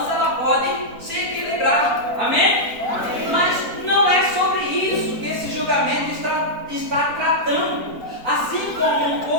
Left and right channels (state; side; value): late; left; 4.4 ms